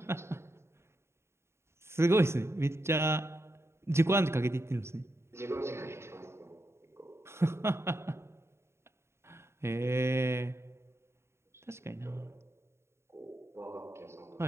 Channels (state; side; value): late; left; 0.13 ms